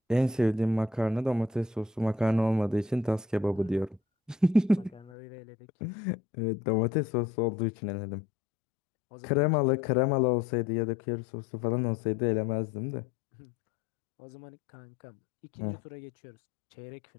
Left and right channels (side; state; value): right; drops out; at 5.1 s